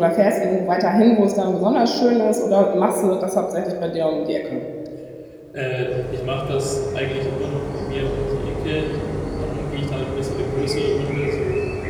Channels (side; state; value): both; identical; correlation 1.00